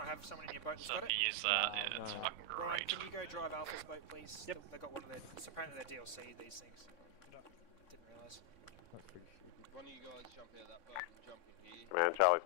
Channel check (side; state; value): right; late; 3.6 ms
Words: have someone in your boat that's So got if it? you use that, yeah, it's No. fucking Brian, great. can you go drive Alpha's boat, please? Yep. They got one of their, it's apparently their DLC, these things. Didn't realise. That's pretty stupid. One of you guys jump out of that boat and jump in here. Command, Charlie's